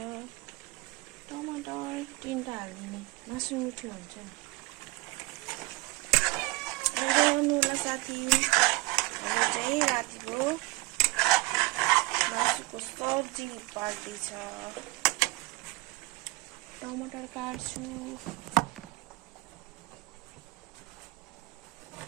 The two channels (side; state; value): left; quieter; 22.1 dB